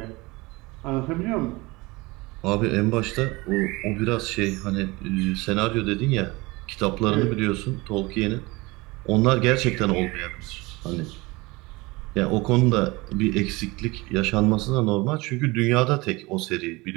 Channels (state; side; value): quieter; left; 23.1 dB